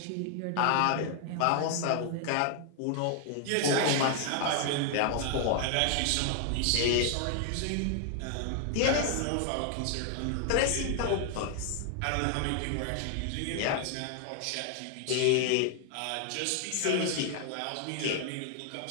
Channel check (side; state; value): both; different; correlation 0.00